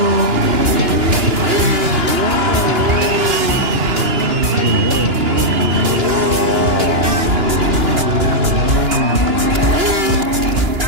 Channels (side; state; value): left; late; 2.9 ms